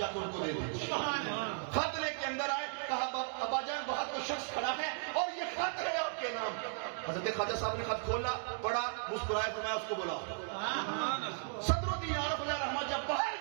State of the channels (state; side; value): silent; left; 54 dB below the other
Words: کے ان کو دے دیجیے. خط لے کے اندر آئے، کہا ابا جان باہر کوئی شخص کھڑا ہے اور یہ خط ہے آپ کے نام. حضرت خواجہ صاحب نے خط کھولا، پڑھا، مسکرائے، فرمایا اس کو بلا. صدر الدین عارف علیہ رحمہ جب باہر